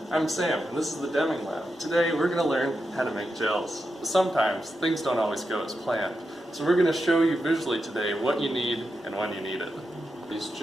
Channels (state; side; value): normal; both; correlation 0.87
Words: I'm Sam, and this is the Deming Lab. Today we're going to learn how to make gels. Sometimes things don't always go as planned, so we're going to show you visually today what you need and when you need it. These